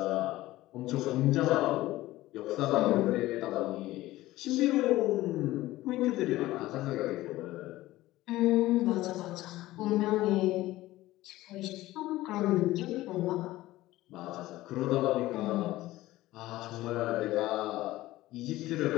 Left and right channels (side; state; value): right; quieter; 16.9 dB